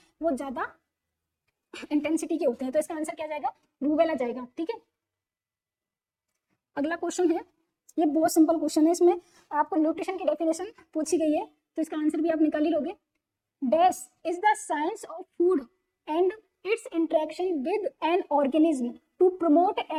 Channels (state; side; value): identical; both; correlation 1.00